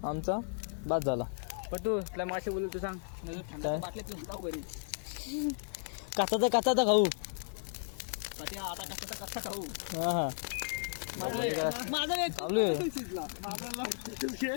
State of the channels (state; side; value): silent; right; digital silence